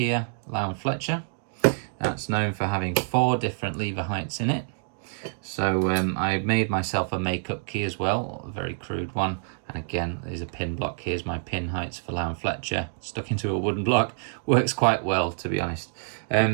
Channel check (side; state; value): left; silent; digital silence